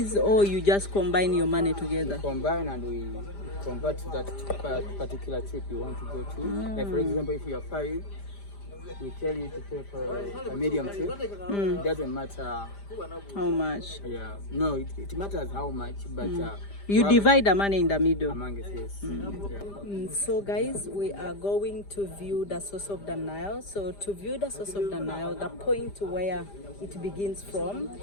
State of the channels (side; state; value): right; late; 5.0 ms